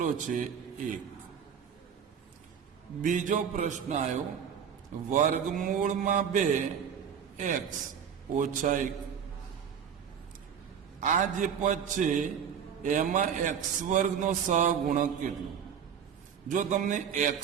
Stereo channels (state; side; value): quieter; left; 7.9 dB